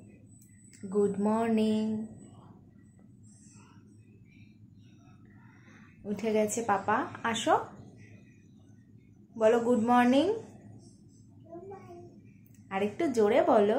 good morning. উঠে গেছে পাপা, আসো বলো গুড মর্নিং। আর একটু জোরে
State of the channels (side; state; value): both; identical; correlation 1.00